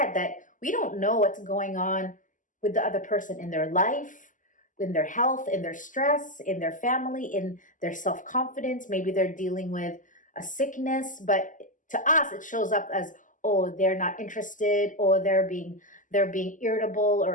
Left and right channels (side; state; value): right; late; 0.38 ms